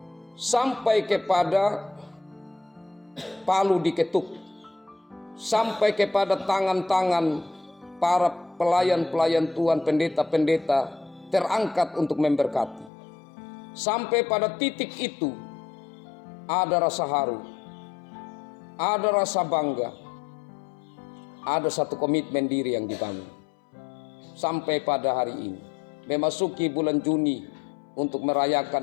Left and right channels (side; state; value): right; drops out; at 12.9 s